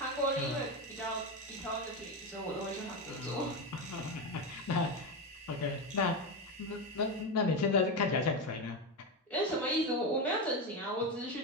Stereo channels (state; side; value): normal; both; correlation 0.14